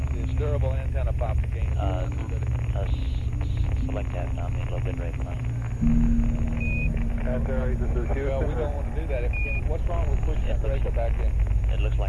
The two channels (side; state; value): both; identical; correlation 1.00